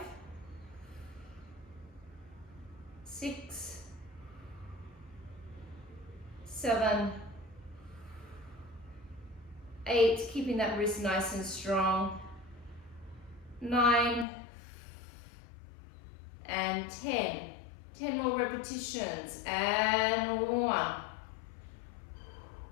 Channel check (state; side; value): drops out; right; at 14.2 s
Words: 6, 7, 8, keeping that wrist nice and strong, 9, and 10. 10 more repetitions, and 1,